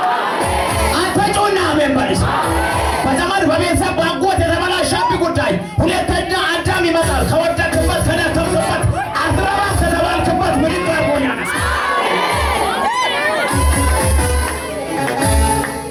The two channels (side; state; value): both; identical; correlation 1.00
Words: አንተ ጮና አሜን በልስ። በዘመን በቤተሰብ ባጎት የተበላሸብህ ጉዳይ ሁለተኛ አዳም ይመጣል። ከወደቅበት ከደከምክበት አትረባ ከተባልክበት ምድር አርጎኛ